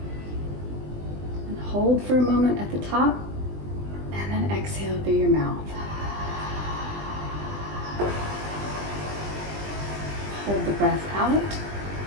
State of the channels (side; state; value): left; late; 20 ms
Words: And hold for a moment at the top. And then exhale through your mouth. Hold the breath out.